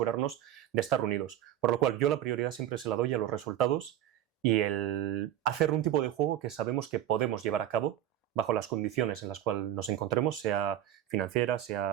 de estar unidos. Por lo cual yo la prioridad siempre se la doy a los resultados y el hacer un tipo de juego que sabemos que podemos llevar a cabo bajo las condiciones en las cuales nos encontremos, sea financiera,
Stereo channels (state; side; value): quieter; left; 11.7 dB